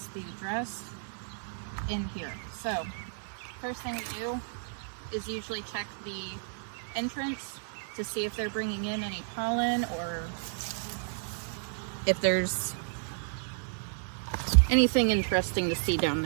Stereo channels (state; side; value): silent; left; digital silence